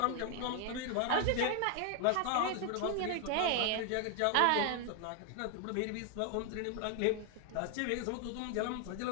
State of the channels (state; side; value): different; both; correlation 0.00